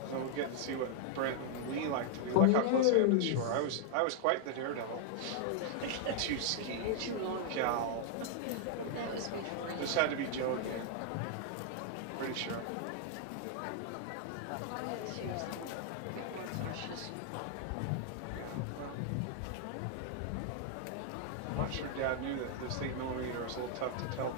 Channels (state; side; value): different; both; correlation -0.01